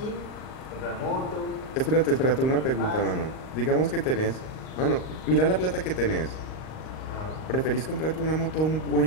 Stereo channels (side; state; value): right; late; 38 ms